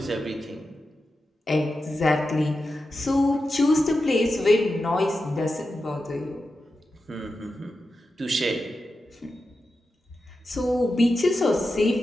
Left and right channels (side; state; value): both; normal; correlation 0.90